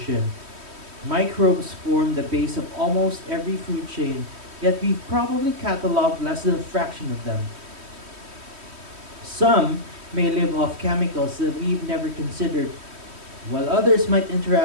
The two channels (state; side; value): late; left; 3.1 ms